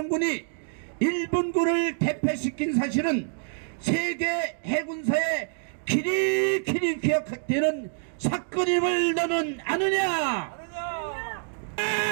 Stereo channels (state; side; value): silent; left; digital silence